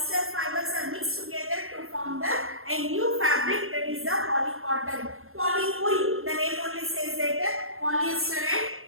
fibers are mixed together to form a new fabric, that is the polycotton. Polywool, the name only says that polyester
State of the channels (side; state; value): left; late; 0.61 ms